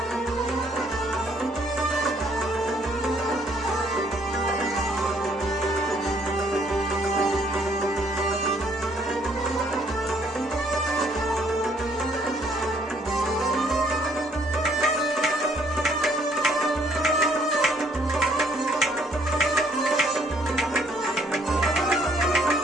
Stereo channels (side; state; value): both; normal; correlation 0.65